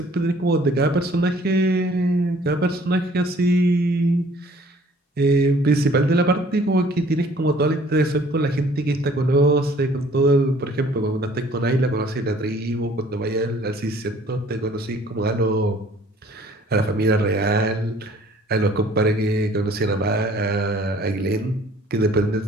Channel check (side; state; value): both; normal; correlation 0.55